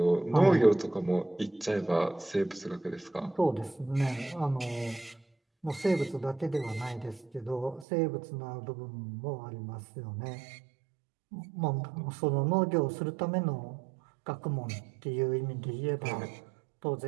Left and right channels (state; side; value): drops out; left; at 7.9 s